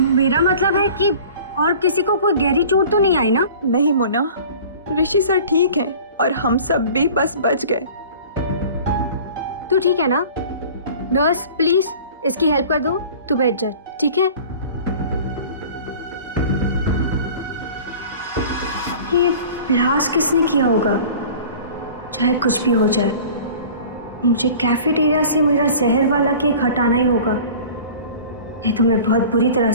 मतलब है कि और किसी को कोई गहरी चोट तो नहीं आई ना? नहीं मोना, ऋषि सर ठीक हैं और हम सब भी बस बच गए। तू ठीक है ना? नर्स प्लीज इसकी हेल्प कर दो, तू बैठ जा, ठीक है? ये ब्लास्ट किसने किया होगा? चाहे कुछ भी हो जाए, मुझे कैफेटेरिया से मेरा जहर वाला केक हटाना ही होगा, नहीं तो मैं बहुत बुरी तरह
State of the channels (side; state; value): both; inverted; correlation -0.43